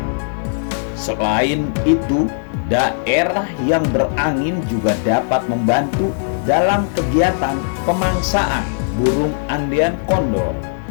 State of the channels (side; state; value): right; silent; digital silence